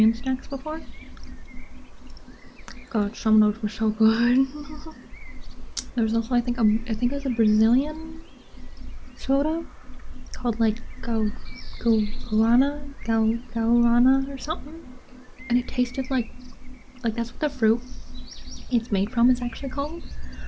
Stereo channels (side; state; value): both; identical; correlation 1.00